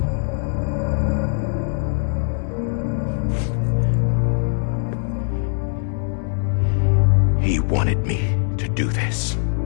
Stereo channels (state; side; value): silent; right; 65 dB below the other